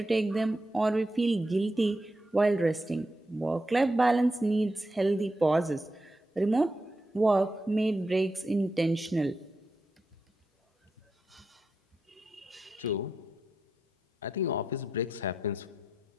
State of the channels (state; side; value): normal; both; correlation 0.86